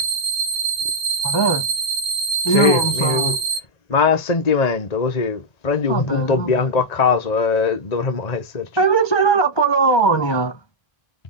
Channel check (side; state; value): right; late; 1.9 ms